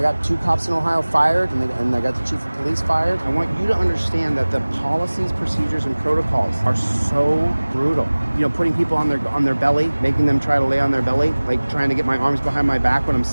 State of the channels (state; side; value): inverted; both; correlation -1.00